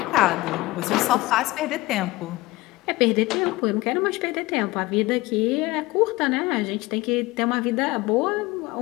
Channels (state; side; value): quieter; right; 20.3 dB